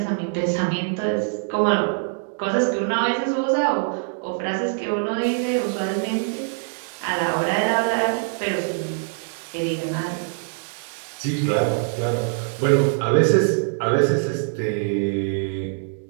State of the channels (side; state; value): left; silent; digital silence